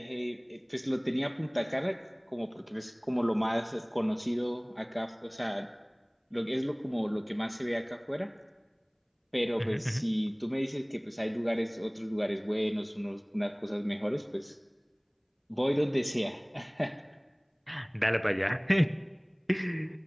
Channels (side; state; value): both; identical; correlation 1.00